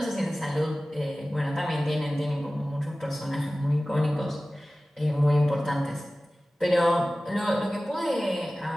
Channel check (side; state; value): both; normal; correlation 0.97